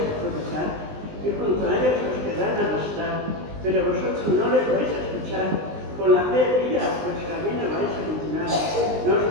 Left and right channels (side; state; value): left; late; 19 ms